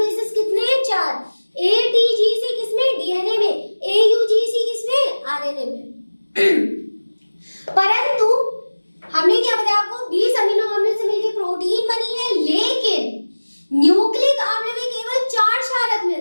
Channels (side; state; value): both; inverted; correlation -1.00